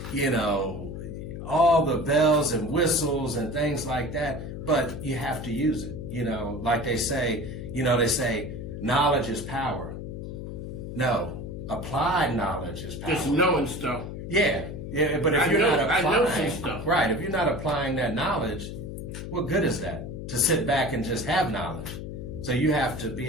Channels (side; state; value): left; noise; hum, 8 dB below the sound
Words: all the bells and whistles and things like that, but you have to use it. Like they say, knowledge is power. No, applied knowledge is power. Just knowing stuff. Yeah, but if you're not applying, I know some stuff. Right, if you're not applying that knowledge, what good is that? To sit back and just have knowledge. So you have to